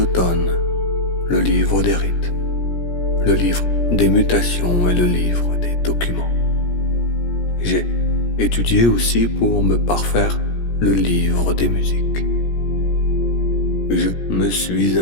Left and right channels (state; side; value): late; right; 17 ms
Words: le livre des rites, le livre des mutations et le livre des documents. J'ai étudié aussi pour me parfaire le livre des musiques. Je me suis